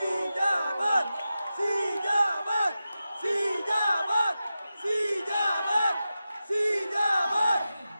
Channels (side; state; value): both; inverted; correlation -0.92